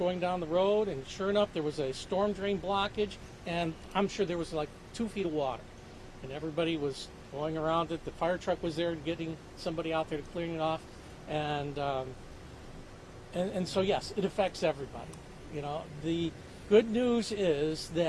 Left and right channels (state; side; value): identical; both; correlation 1.00